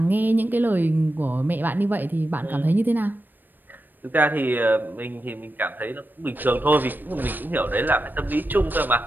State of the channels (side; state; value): left; late; 0.091 ms